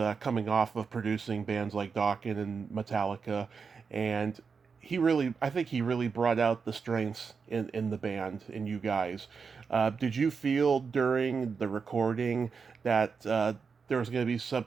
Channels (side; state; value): left; quieter; 5.5 dB